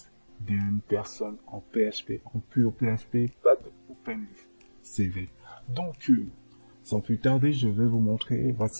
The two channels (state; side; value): inverted; both; correlation -1.00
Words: d'une personne en PHP, en pur PHP, pas de OpenCV. Donc, sans plus tarder, je vais vous montrer,